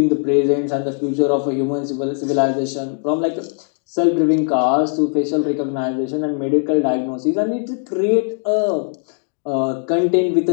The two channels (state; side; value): silent; right; 58 dB below the other